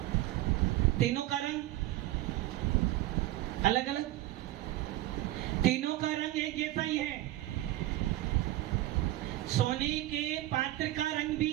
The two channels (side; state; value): left; quieter; 16.1 dB